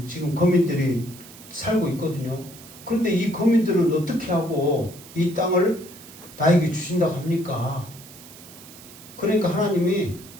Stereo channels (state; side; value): noise; right; hiss, 19 dB below the sound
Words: 지금 거민들이 살고 있거든요. 그런데 이 거민들은 어떻게 하고 이 땅을 나에게 주신다고 합니까? 그러니까 하나님이